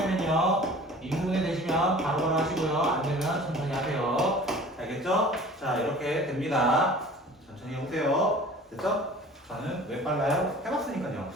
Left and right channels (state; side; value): normal; both; correlation 0.44